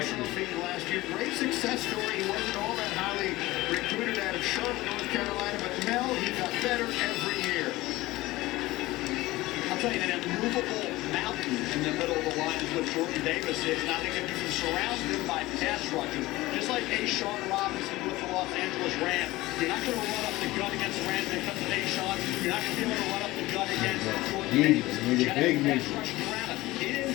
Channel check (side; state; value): right; quieter; 18.7 dB